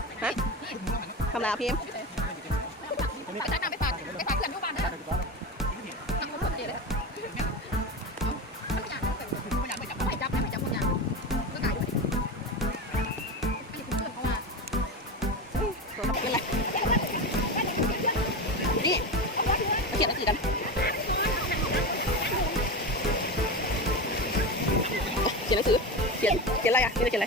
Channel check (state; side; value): normal; both; correlation 0.22